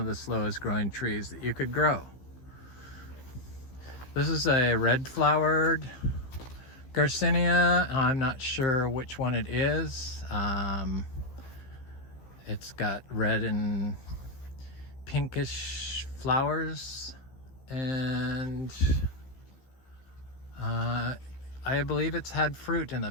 the slowest growing trees that you could grow. This is a red flowered Garcinia. I'm not sure which one it is. It's got red and pinkish flowers, and I believe it's had fruit in the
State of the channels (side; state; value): right; late; 15 ms